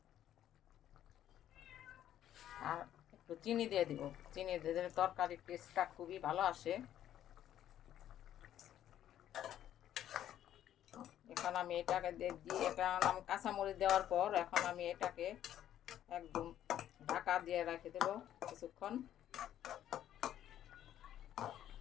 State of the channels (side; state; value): right; quieter; 11.4 dB